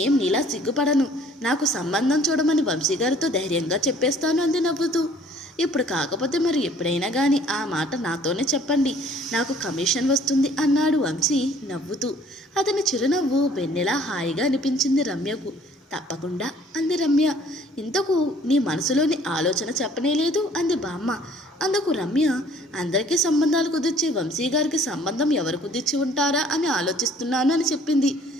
నీలా సిగ్గుపడను. నాకు సంబంధం చూడమని వంశీగారితో ధైర్యంగా చెప్పేస్తాను అంది నవ్వుతూ. ఇప్పుడు కాకపోతే మరి ఎప్పుడైనా కానీ ఆ మాట నాతోనే చెప్పండి, నాకు కమిషన్ వస్తుంది అన్నాడు వంశీ నవ్వుతూ. అతని చిరునవ్వు వెన్నెలా హాయిగా అనిపించింది రమ్యకు. తప్పకుండా అంది రమ్య. ఇంతకు నీ మనసులోని ఆలోచన చెప్పనేలేదు అంది బామ్మ. అందుకు రమ్య అందరికీ సంబంధాలు కుదిర్చి వంశీ గారికి సంబంధం ఎవరు కుదిర్చి ఉంటారా అని ఆలోచిస్తున్నాను అని చెప్పింది.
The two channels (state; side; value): normal; both; correlation 0.56